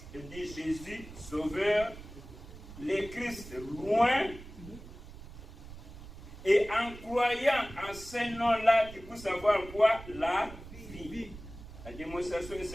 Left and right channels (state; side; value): noise; right; rumble, 15 dB below the sound